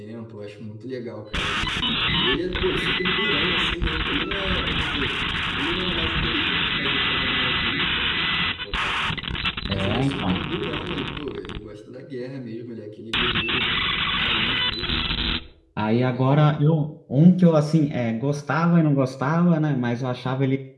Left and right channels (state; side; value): identical; both; correlation 1.00